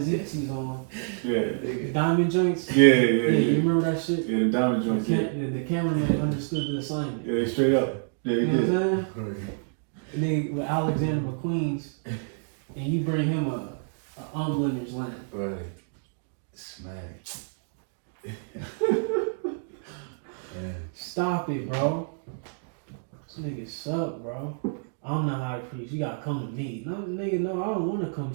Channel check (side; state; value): left; silent; digital silence